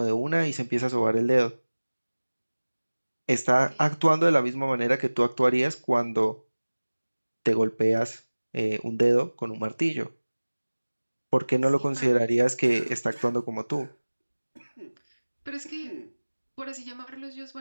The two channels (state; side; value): inverted; both; correlation -1.00